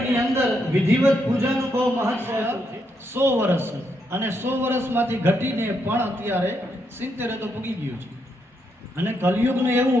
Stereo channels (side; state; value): both; normal; correlation 0.79